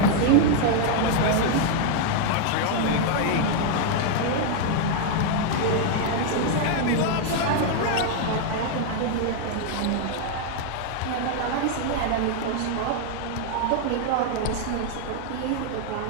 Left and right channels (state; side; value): different; both; correlation 0.00